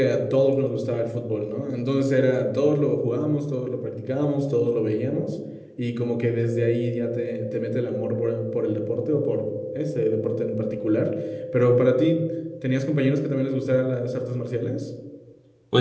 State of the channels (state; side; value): identical; both; correlation 1.00